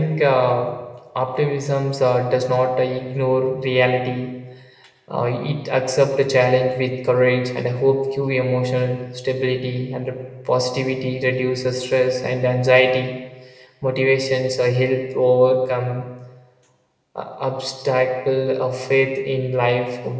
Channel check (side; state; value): both; identical; correlation 1.00